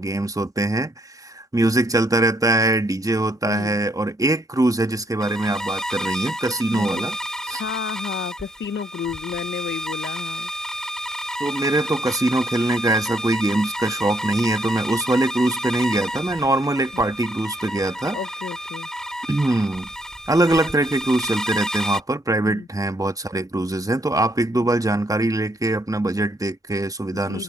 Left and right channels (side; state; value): both; normal; correlation 0.72